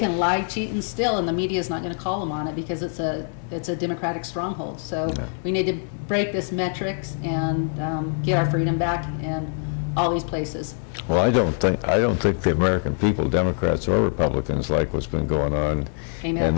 lie, cheat, and steal, and the media is not going to call them on it because it's a Democratic stronghold. So we need to break this metrics and get our freedom back in all these places. Well, I don't think the American people, Democrats or Republicans, like what's been going on Amen. in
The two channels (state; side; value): silent; right; 62 dB below the other